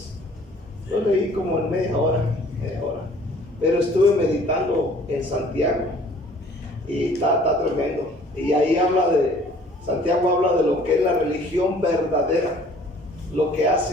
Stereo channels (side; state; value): both; normal; correlation 0.54